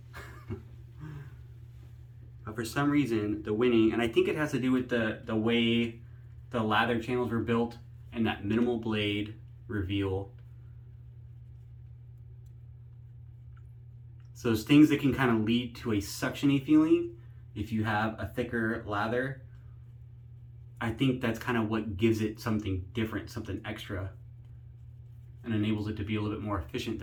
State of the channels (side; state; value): both; identical; correlation 1.00